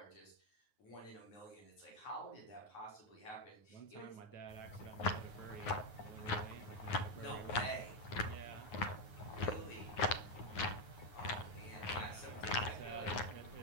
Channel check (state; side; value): late; right; 9.5 ms